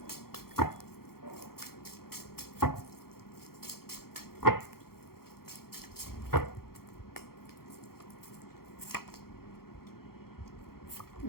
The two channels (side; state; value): right; late; 0.94 ms